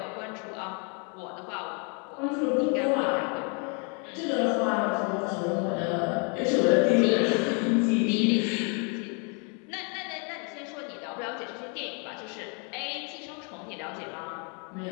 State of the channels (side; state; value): right; quieter; 36.3 dB